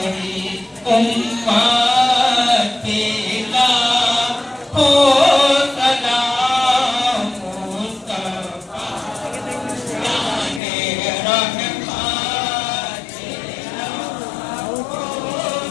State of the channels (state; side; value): drops out; right; at 10.6 s